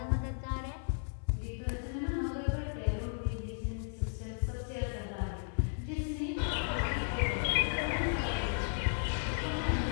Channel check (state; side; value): silent; right; 55 dB below the other